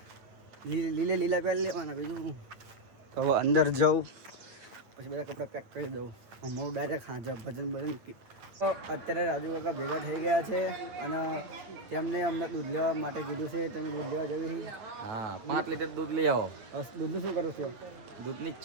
લીલે લીલા પહેરી લેવાના. બીજું તો હવે અંદર જાઉં પછી બધા કપડાં પેક કરી દઉં. હું ડાયરેક્ટ હાજર ભજન ભજન. તો અત્યારે રાજુ કાકા ભેગા થઈ ગયા છે અને તેમને અમને દૂધ લેવા માટે કીધું છે. તમે દૂધ લેવા જવી? હા 5 લીટર દૂધ લઈ આવો. દૂધનું શું કરું છું? દૂધની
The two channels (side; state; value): left; late; 8.7 ms